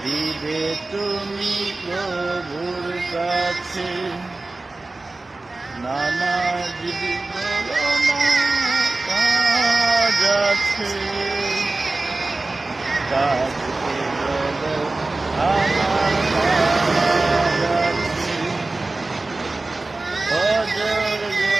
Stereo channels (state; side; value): quieter; left; 3.2 dB